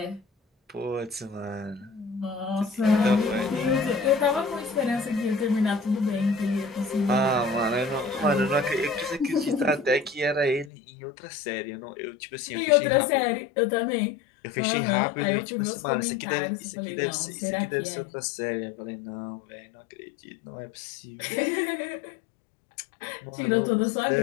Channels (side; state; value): right; drops out; at 10.7 s